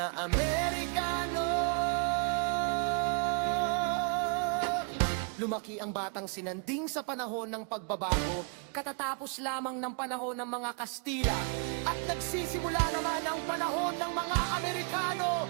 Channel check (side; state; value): left; quieter; 38.5 dB